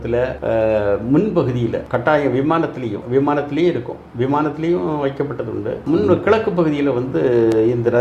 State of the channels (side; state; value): both; identical; correlation 1.00